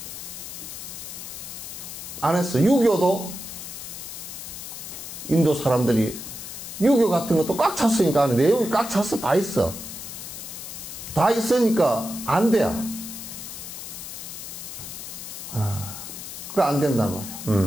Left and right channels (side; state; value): left; noise; hiss, 9 dB below the sound